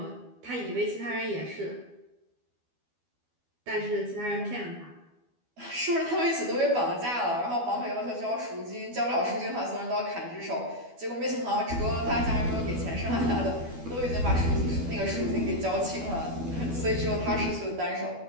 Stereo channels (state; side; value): late; left; 12 ms